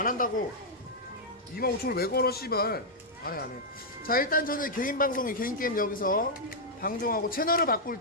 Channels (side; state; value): both; normal; correlation -0.05